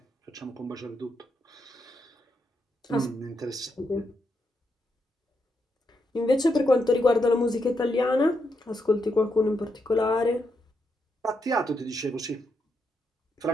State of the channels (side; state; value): both; normal; correlation 0.81